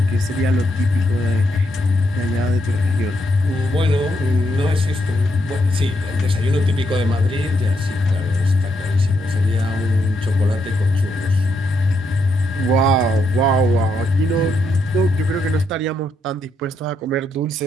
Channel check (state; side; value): normal; both; correlation 0.78